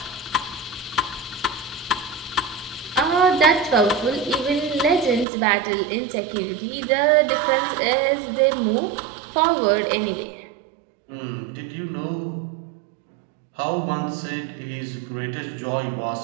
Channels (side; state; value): left; drops out; at 5.2 s